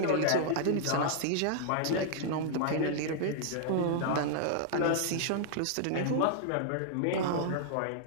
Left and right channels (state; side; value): different; both; correlation -0.01